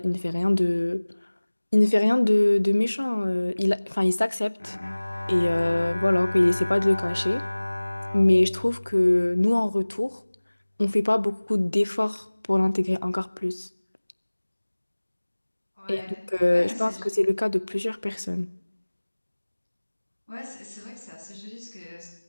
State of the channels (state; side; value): inverted; both; correlation -1.00